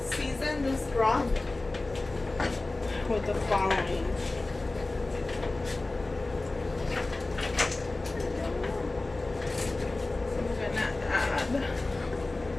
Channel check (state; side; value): quieter; right; 3.1 dB